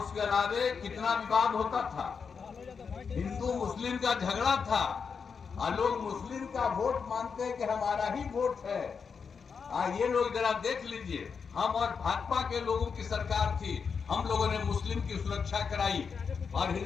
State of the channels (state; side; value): quieter; right; 5.9 dB